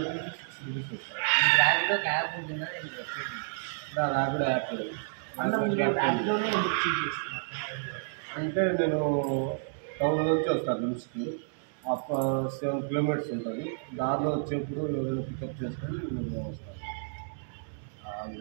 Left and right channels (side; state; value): left; silent; digital silence